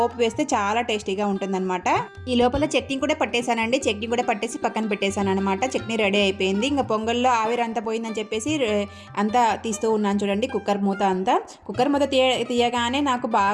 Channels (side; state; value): both; identical; correlation 1.00